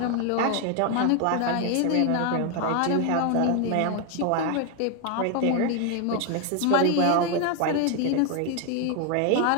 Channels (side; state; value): both; different; correlation 0.01